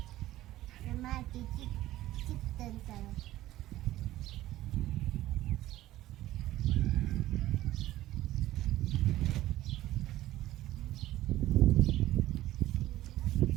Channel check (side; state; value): left; quieter; 15.2 dB